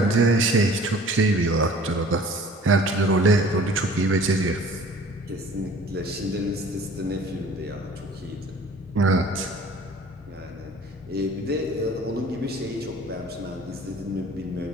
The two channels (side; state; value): both; normal; correlation 0.48